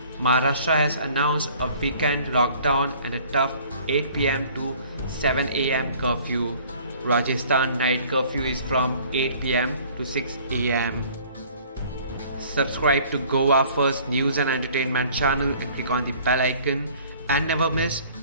Maharashtra has announced a weekend lockdown and a tough 8 pm to 7 am curfew. Rajasthan night curfew is from 8 pm to 6 am. Subscribe to Goa First News and Entertainment channel and click on the bell icon and never miss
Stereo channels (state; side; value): inverted; both; correlation -0.53